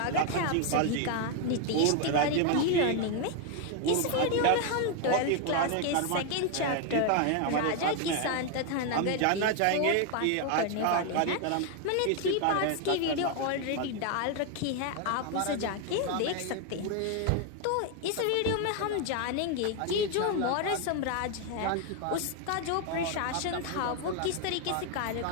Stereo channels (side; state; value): both; different; correlation 0.01